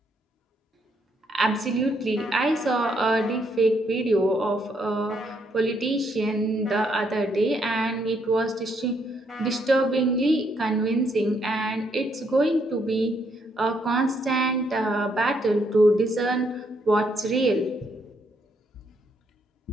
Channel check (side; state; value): both; normal; correlation 0.73